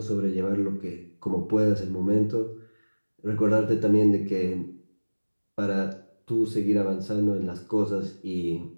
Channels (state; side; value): inverted; both; correlation -1.00